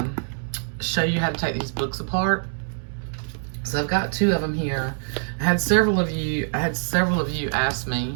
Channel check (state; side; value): silent; left; 62 dB below the other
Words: show you how to take these books apart. So I've got two of them here. I had several of you ask